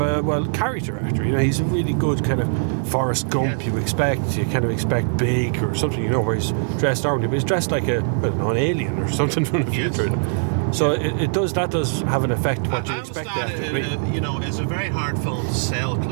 a character actor. You know, he's a really good kind of Forrest Gump. Yes. You kind of expect big or something. You know, where he's dressed normally, but he's dressed like an alien or something from the future. So it does have an effect. I understand it. You know, it's a very hard film to sell.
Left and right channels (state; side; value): silent; left; digital silence